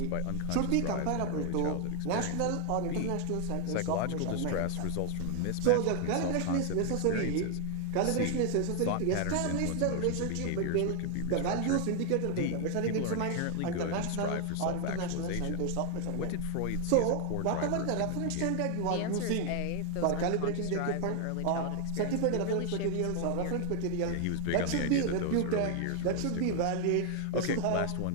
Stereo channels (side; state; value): both; different; correlation 0.00